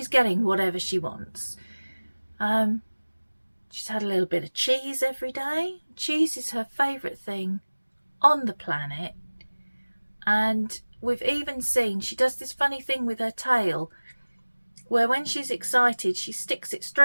getting whatever she wants. She's had a little bit of cheese every day. Cheese is her favourite thing on the planet. And we've even seen, she does this funny thing with her tail, where when she's excited, she sticks it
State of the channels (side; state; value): both; inverted; correlation -1.00